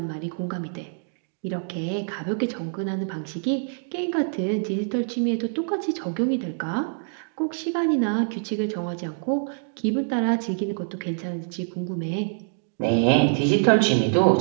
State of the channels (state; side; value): silent; left; digital silence